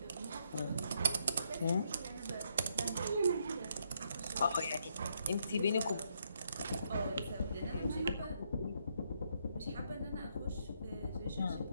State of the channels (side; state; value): both; inverted; correlation -0.75